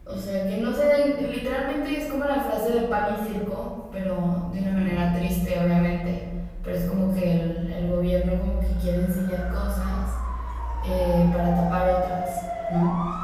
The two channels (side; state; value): both; identical; correlation 1.00